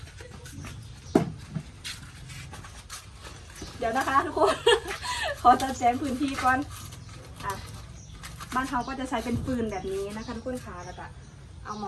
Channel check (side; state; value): both; identical; correlation 1.00